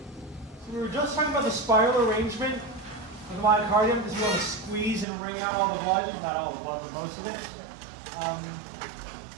So we were just talking about the spiral arrangement of the myocardium because you want to squeeze and wring out all the blood. Not all the blood, but most of it.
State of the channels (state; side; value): drops out; left; at 5.1 s